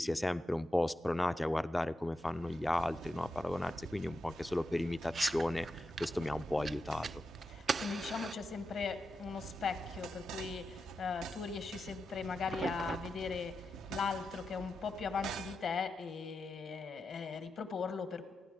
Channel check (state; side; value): normal; both; correlation 0.88